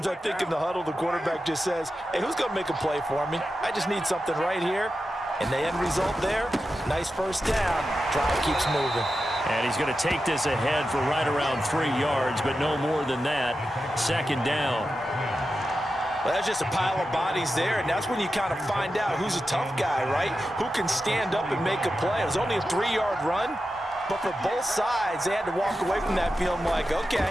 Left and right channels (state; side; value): normal; both; correlation 0.91